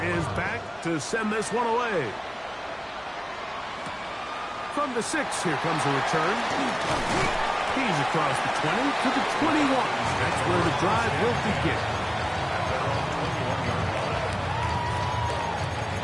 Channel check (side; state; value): both; identical; correlation 1.00